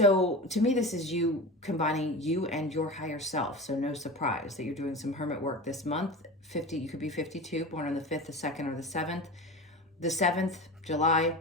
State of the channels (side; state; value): both; normal; correlation 0.30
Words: to me, this is you combining you and your higher self. So no surprise that you're doing some hermit work this month. 50, you could be 52, born on the 5th, the 2nd, or the 7th. The 7th, July,